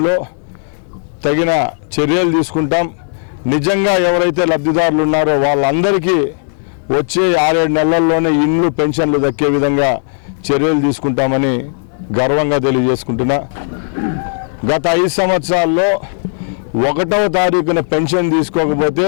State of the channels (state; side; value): silent; right; digital silence